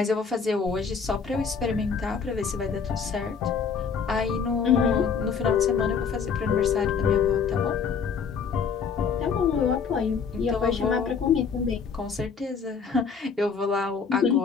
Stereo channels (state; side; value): quieter; right; 6.0 dB